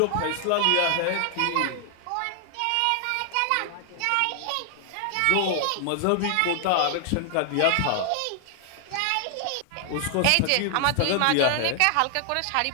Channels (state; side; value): different; both; correlation 0.00